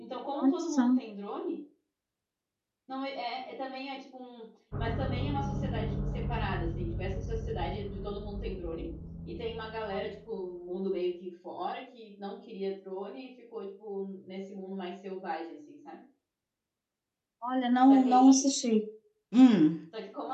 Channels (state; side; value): identical; both; correlation 1.00